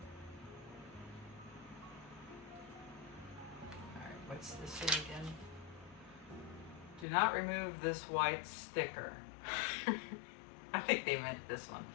Alright, what's this say again? Do not remove this white sticker. I think they meant this one.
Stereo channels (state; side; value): drops out; right; at 7.1 s